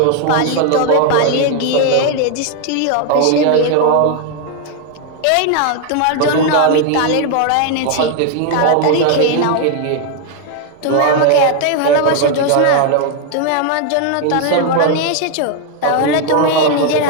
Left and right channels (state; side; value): different; both; correlation 0.01